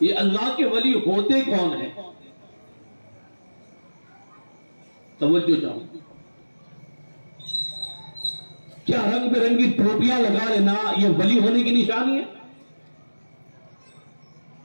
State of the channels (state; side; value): inverted; both; correlation -1.00